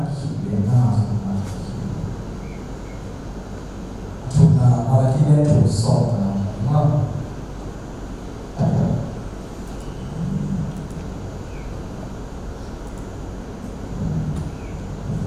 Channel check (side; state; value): both; identical; correlation 1.00